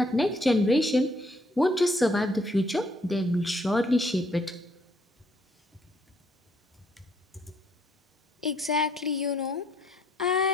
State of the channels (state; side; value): normal; both; correlation 0.68